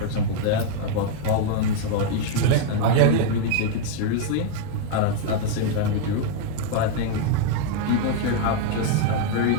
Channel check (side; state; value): both; different; correlation 0.00